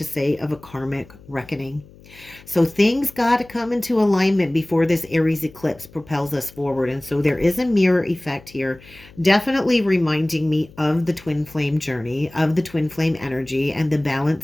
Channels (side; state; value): left; noise; hum, 23 dB below the sound